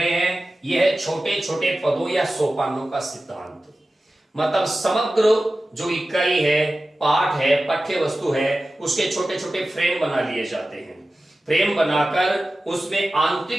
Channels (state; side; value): normal; both; correlation 0.95